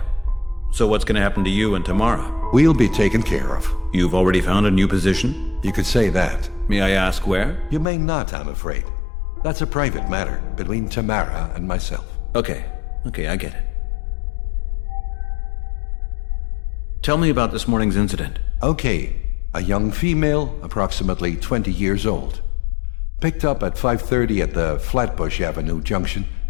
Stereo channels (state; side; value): drops out; right; at 7.9 s